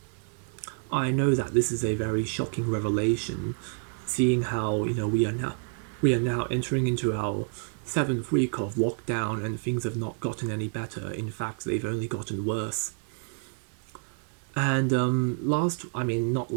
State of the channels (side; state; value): left; silent; 59 dB below the other